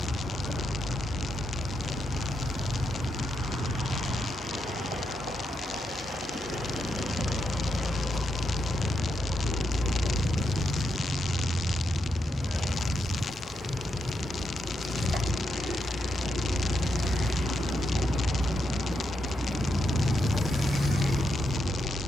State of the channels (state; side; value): normal; both; correlation 0.82